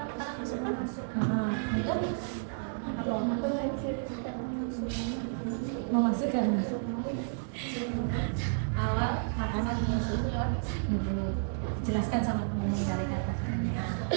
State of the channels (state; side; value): silent; left; digital silence